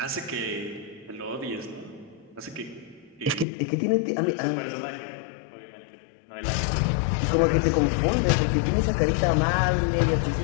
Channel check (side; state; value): right; drops out; at 3.5 s